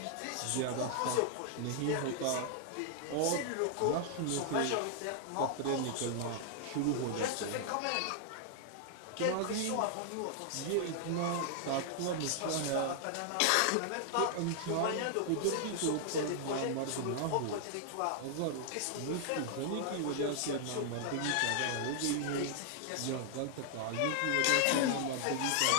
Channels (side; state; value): both; different; correlation 0.00